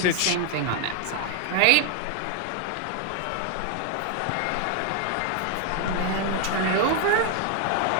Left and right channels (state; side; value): different; both; correlation 0.00